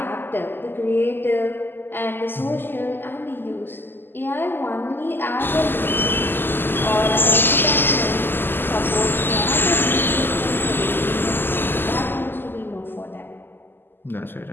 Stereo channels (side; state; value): right; late; 0.097 ms